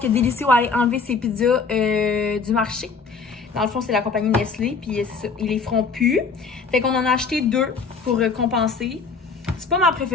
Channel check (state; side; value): quieter; right; 4.9 dB